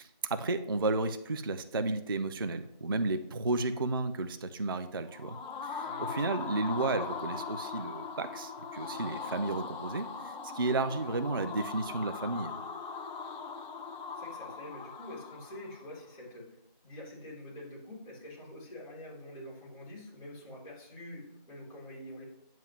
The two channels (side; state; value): both; inverted; correlation -0.45